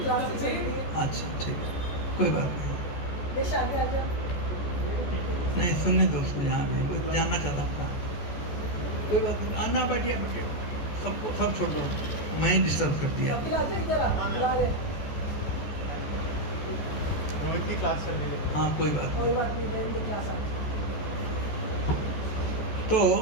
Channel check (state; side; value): late; right; 14 ms